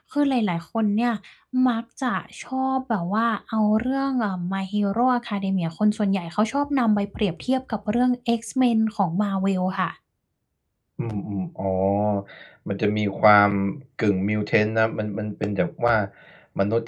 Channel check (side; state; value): both; identical; correlation 1.00